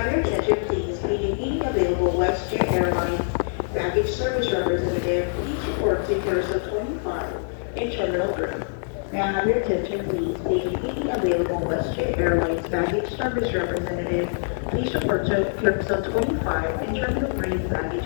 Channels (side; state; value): right; silent; digital silence